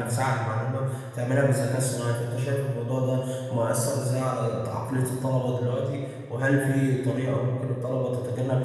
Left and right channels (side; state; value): both; identical; correlation 1.00